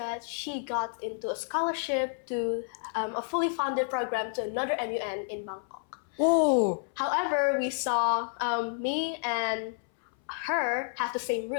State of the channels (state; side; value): silent; right; 58 dB below the other